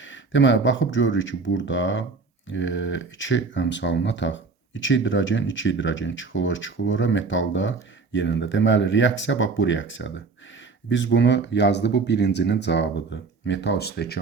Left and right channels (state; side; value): quieter; left; 4.4 dB